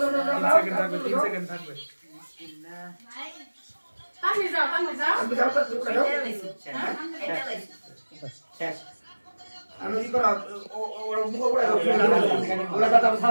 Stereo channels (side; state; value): both; inverted; correlation -1.00